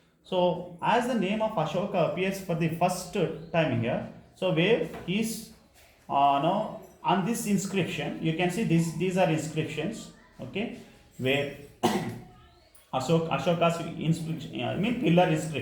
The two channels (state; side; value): identical; both; correlation 1.00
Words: So as the name of Ashoka appears for the first time here, so where is on this inscription, you can see these are inscriptions, okay, where Ashoka's pillar